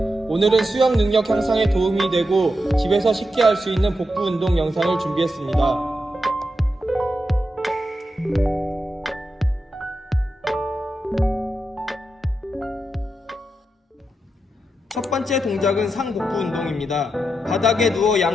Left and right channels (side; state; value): both; normal; correlation 0.87